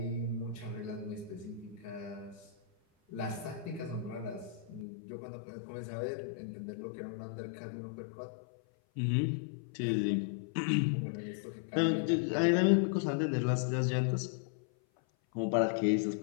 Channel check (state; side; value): drops out; right; at 4.9 s